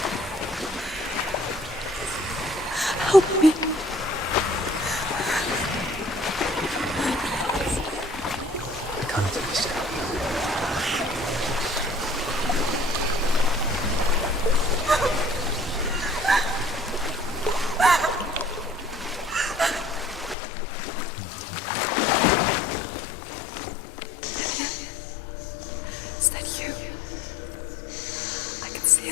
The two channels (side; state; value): right; drops out; at 20.4 s